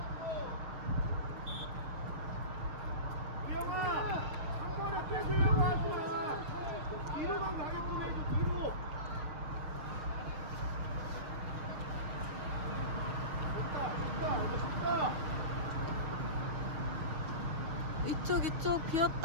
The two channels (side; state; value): left; late; 6.5 ms